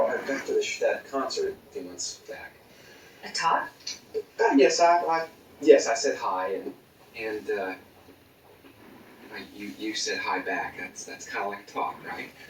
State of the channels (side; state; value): both; identical; correlation 1.00